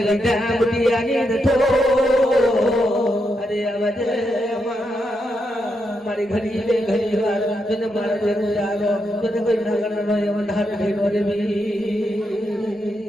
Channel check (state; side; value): normal; both; correlation 0.83